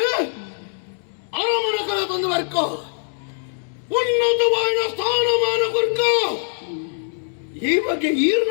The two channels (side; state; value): right; silent; digital silence